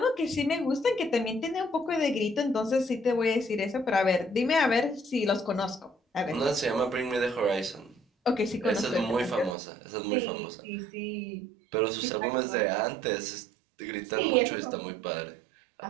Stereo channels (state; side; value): drops out; left; at 9.6 s